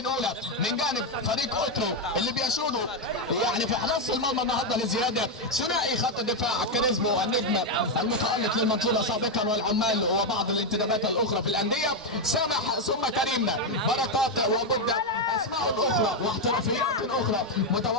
من جانب فريق اوترو اللي بيشودوا يعني في حراسه المرمى النهارده لزياده ثنائي خط الدفاع كاريزمو النجم المتالق للمنصوره سابقا والعمال وبعض الانتدابات الاخرى في الانديه سامح ثم كريم بركات وبدا اسماء اخرى واحترافيات اخرى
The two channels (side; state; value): both; normal; correlation 0.04